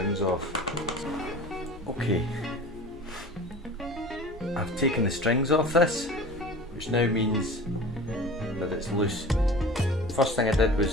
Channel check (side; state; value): both; normal; correlation 0.39